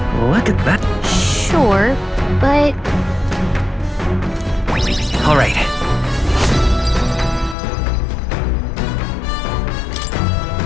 Look at that. Sure, but... All right.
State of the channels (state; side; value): drops out; right; at 7.6 s